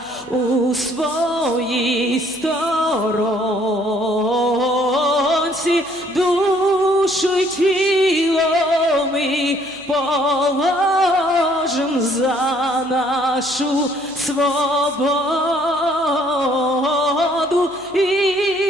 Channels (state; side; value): noise; left; hum, 30 dB below the sound